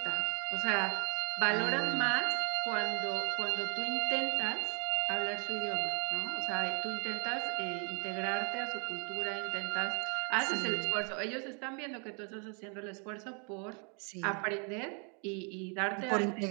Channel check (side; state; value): left; quieter; 37.9 dB